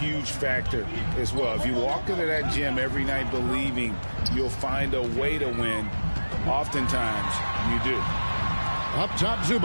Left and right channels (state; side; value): inverted; both; correlation -1.00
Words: factor as well. If you walk into that gym every night believing you'll find a way to win, oftentimes you do. Up top,